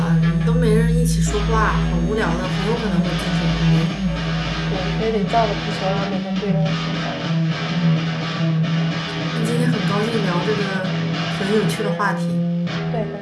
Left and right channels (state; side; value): identical; both; correlation 1.00